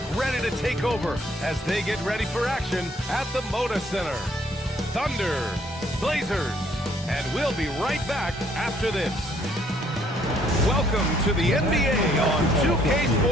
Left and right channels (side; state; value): both; normal; correlation 0.65